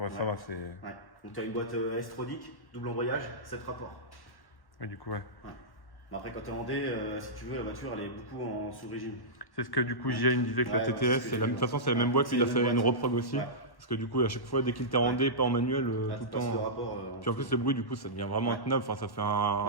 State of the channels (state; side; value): late; right; 1.1 ms